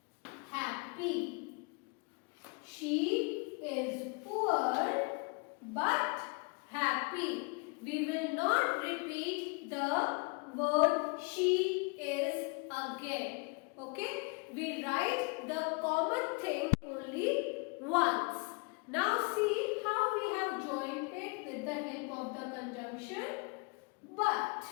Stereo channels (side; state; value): right; quieter; 31.5 dB